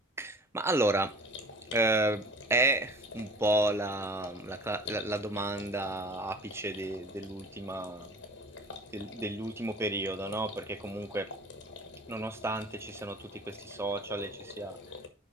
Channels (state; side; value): normal; both; correlation 0.43